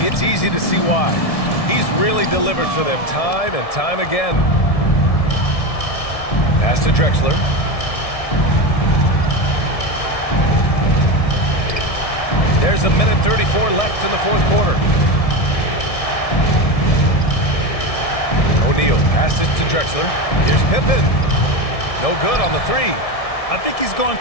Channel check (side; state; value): right; late; 1.7 ms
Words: easy to see why. He's really delivered for them time and time again. Pass to Drexler. There's a minute 34 left in the fourth quarter. O'Neal passes to Drexler. Here's Pippen. No good on the 3. I think he's gone